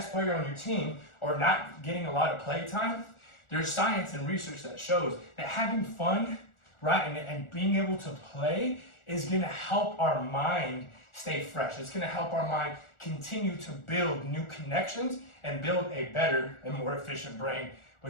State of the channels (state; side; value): late; right; 1.4 ms